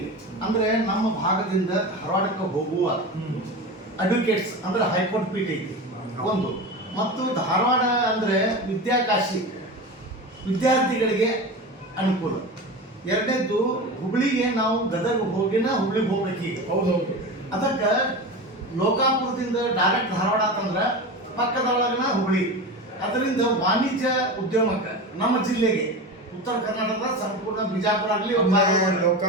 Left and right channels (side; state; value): both; normal; correlation 0.27